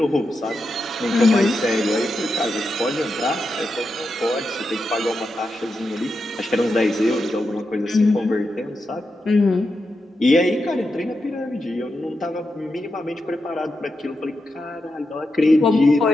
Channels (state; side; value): normal; both; correlation 0.87